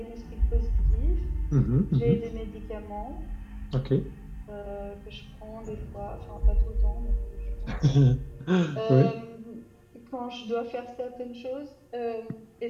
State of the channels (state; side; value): identical; both; correlation 1.00